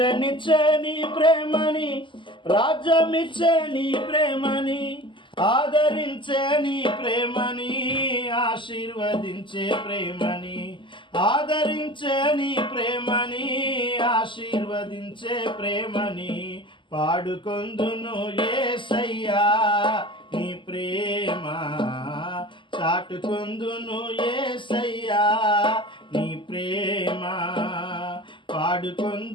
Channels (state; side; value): late; right; 0.24 ms